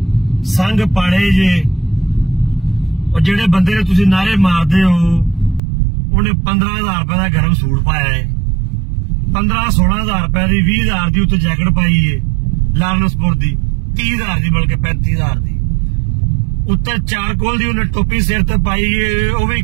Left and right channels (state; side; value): drops out; left; at 5.6 s